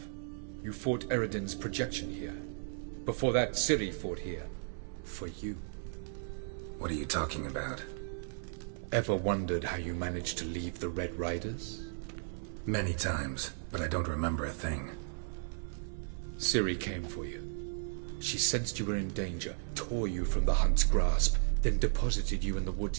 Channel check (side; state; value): left; silent; 54 dB below the other